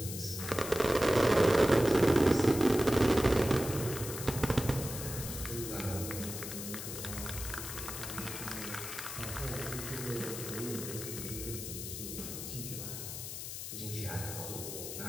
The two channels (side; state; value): left; noise; hiss, 7 dB below the sound